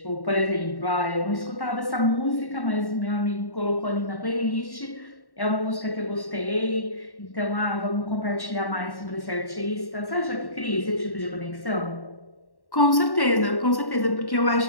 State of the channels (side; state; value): right; late; 1.1 ms